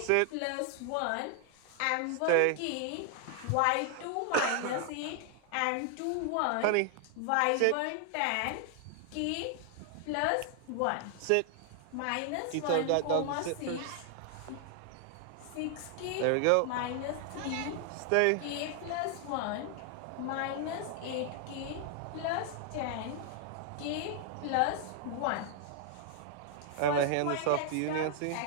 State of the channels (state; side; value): different; both; correlation 0.00